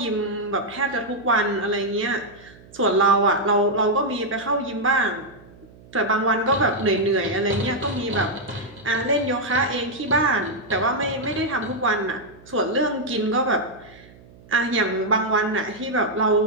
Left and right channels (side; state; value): right; noise; hum, 23 dB below the sound